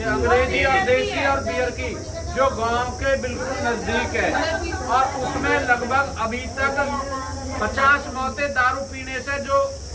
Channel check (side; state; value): both; identical; correlation 1.00